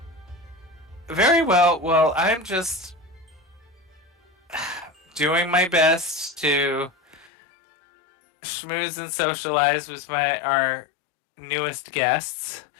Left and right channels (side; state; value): right; drops out; at 7.3 s